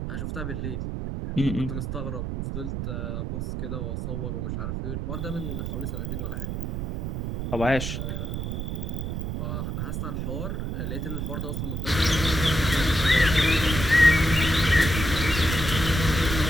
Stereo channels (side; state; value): right; noise; rumble, 3 dB below the sound